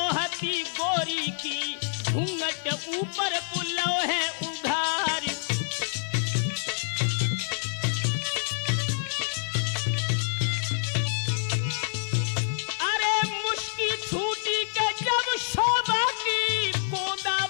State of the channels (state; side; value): silent; right; 60 dB below the other